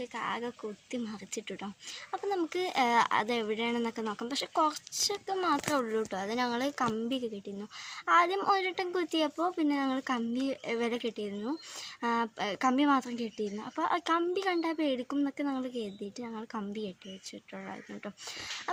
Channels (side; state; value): both; identical; correlation 1.00